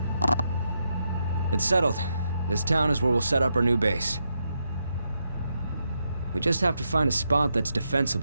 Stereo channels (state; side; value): inverted; both; correlation -0.83